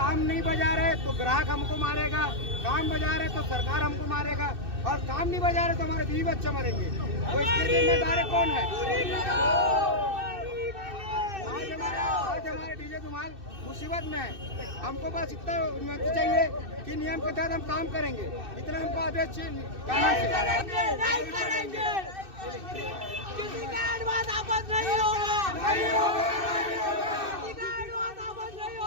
नहीं बजा रहे तो ग्राहक हमको मारेगा, काम बजा रहे तो सरकार हमको मारेगा और काम नहीं बजा रहे तो हमारे बीवी बच्चे मरेंगे। तो इसके जिम्मेदार कौन है? आज हमारे डीजे धुमाल मुसीबत में है। हमको बस इतना अनुमति चाहिए कि नियम के तहत हम काम करेंगे। इतना हमको आदेश चाहिए।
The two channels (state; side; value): late; left; 2.6 ms